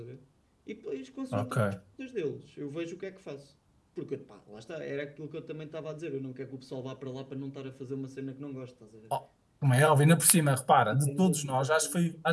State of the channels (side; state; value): both; identical; correlation 1.00